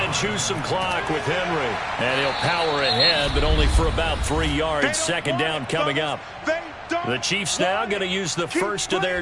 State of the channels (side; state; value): both; identical; correlation 1.00